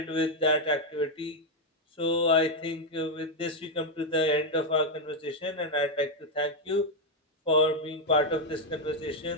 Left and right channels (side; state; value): both; normal; correlation 0.02